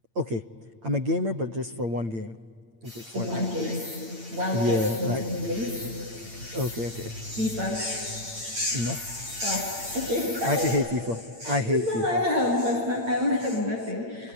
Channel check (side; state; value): left; late; 8.8 ms